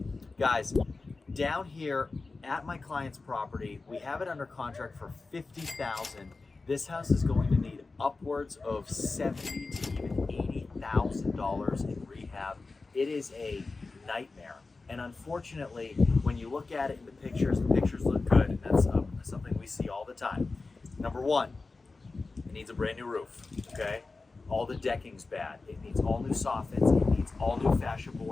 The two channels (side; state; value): right; quieter; 3.8 dB